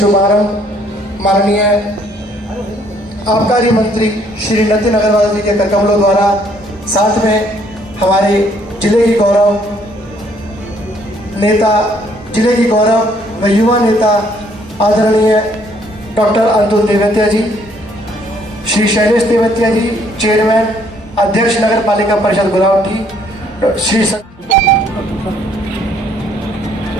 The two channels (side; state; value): both; normal; correlation 0.65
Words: शुभारंभ माननीय आबकारी मंत्री श्री नितिन अग्रवाल जी के करकमलों द्वारा, साथ में हमारे जिले की गौरव नेता, जिले की गौरव व युवा नेता आदरणीय डॉक्टर अतुल तेवतिया जी, श्री शैलेश तेवतिया जी चेयरमैन अध्यक्ष नगर पालिका परिषद गुलावटी, श्री